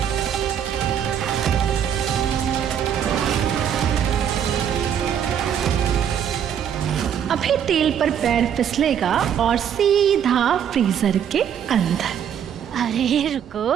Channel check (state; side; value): quieter; left; 8.9 dB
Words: अभी तेल पर पैर फिसलेगा और सीधा फ्रीजर के अंदर। अरे